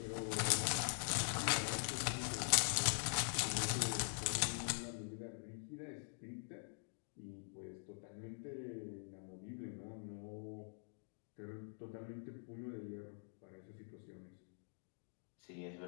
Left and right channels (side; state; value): right; silent; digital silence